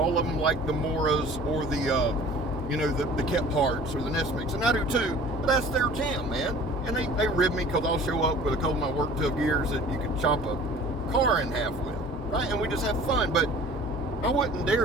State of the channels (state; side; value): normal; both; correlation 0.46